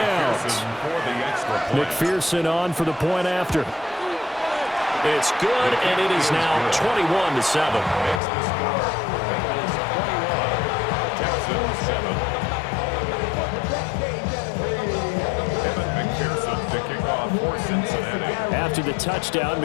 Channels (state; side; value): drops out; right; at 8.2 s